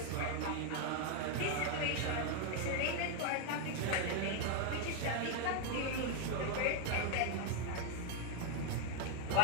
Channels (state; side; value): different; both; correlation 0.01